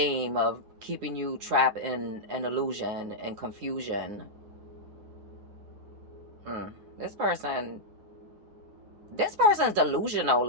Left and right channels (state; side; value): late; left; 9.7 ms